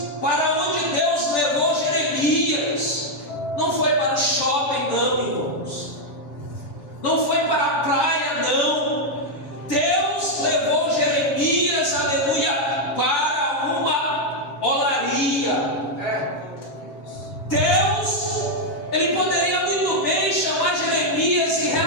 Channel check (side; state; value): right; late; 6.9 ms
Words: para onde Deus levou Jeremias. Não foi para o shopping, não, irmãos. Não foi para a praia, não. Deus levou Jeremias, aleluia, para uma olaria. Deus, ele poderia muito bem chamar Jeremias e